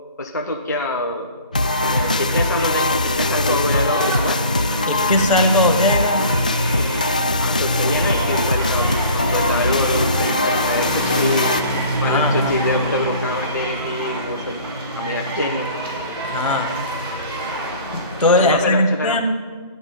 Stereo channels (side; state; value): both; inverted; correlation -0.45